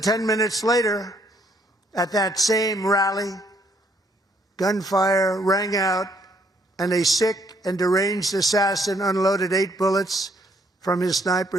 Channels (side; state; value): both; normal; correlation 0.68